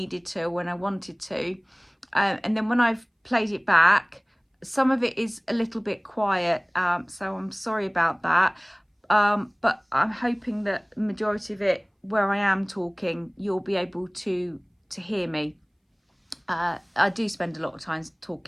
to, when I wanted to, and then when I've played it back, some of it is a little bit quiet, so I'm sorry about that, but I'm hoping that the majority of it, where I am talking, you'll be able to hear me. I do spend a lot of time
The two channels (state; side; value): identical; both; correlation 1.00